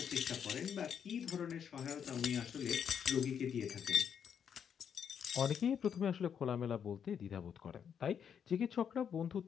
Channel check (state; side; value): quieter; right; 7.9 dB